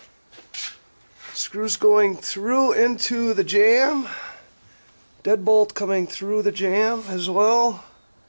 Screws going through into the jamb. Deadbolt coming through the jamb as well.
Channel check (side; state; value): both; inverted; correlation -1.00